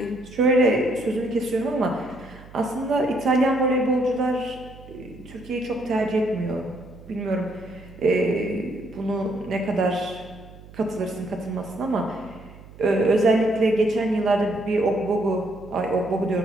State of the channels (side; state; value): right; noise; hum, 19 dB below the sound